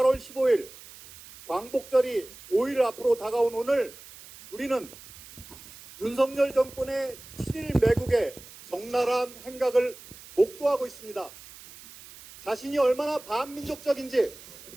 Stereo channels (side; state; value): right; noise; hiss, 18 dB below the sound